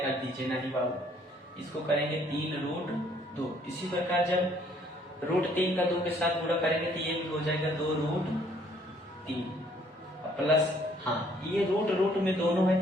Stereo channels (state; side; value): normal; both; correlation 0.63